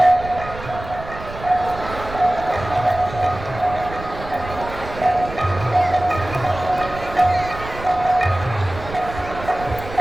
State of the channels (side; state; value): right; noise; rumble, 12 dB below the sound